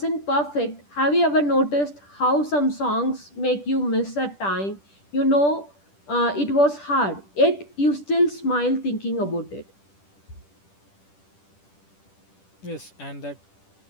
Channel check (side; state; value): right; late; 10 ms